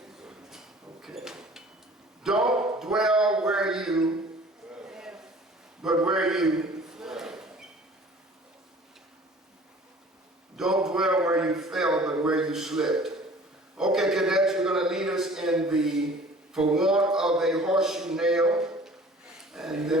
Okay. Don't dwell where you, but where you. Don't dwell where you fell, but where you slipped. Okay, cadets, you're going to lead us in the for want of a horseshoe nail, and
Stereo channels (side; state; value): both; normal; correlation 0.48